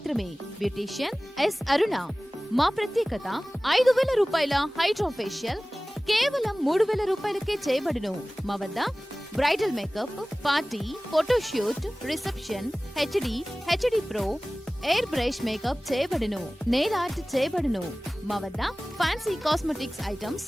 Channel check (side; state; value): both; normal; correlation 0.98